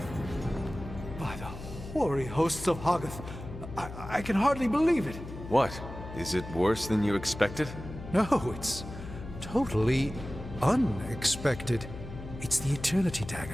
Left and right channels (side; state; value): left; noise; hum, 11 dB below the sound